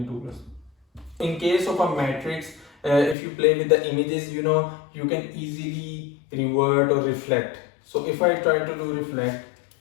2 plus. In case of a matrix, if you play with the images, you know, you can easily revert or reflect. So if I try to do reflect,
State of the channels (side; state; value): right; drops out; at 3.2 s